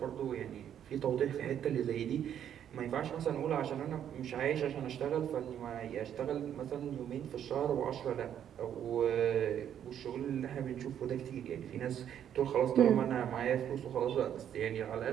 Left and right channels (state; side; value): quieter; left; 9.7 dB